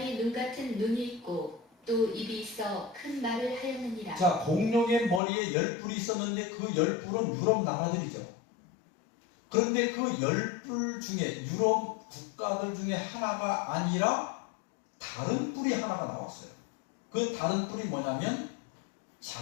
눈 같은 눈이 있고 또 입이 있어 큰 말을 하였느니라. 자, 공룡의 머리에 10뿔이 있었는데 그 10뿔은 유럽 나라들이죠. 그런데 그 10뿔 중에 유럽 국가들 중에 하나가 아니라 다른 뿔이 하나가 나왔어요. 그 다른 뿔이 뭐냐면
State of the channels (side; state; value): right; drops out; at 5.2 s